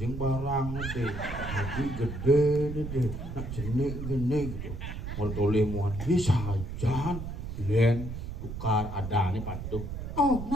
barang deh. Adik gede dede. Nak jenik gini gitu. Mau toleh muan bisa jalan. Len tukar ada nih patuh.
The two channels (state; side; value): noise; right; rumble, 7 dB below the sound